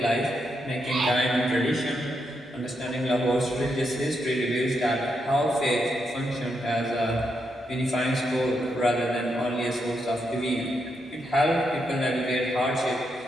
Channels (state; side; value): normal; both; correlation 0.81